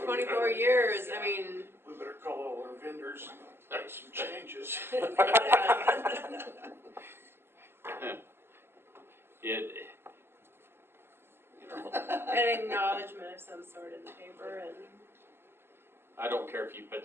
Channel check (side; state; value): left; late; 0.11 ms